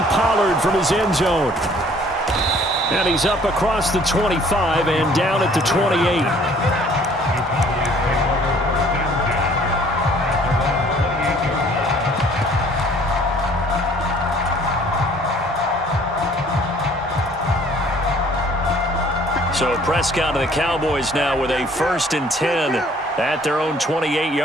Pollard from his end zone. And he's up across the 25 and down at the 28. So Prescott and the Cowboys now with a 1st and 10 at their own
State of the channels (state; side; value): normal; both; correlation 0.56